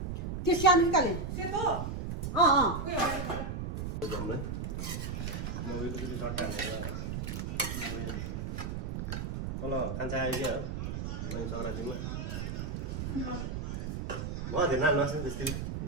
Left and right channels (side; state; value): right; noise; rumble, 4 dB below the sound